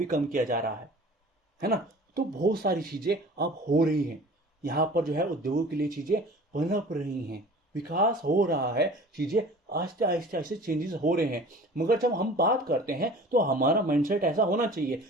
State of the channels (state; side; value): normal; both; correlation 0.43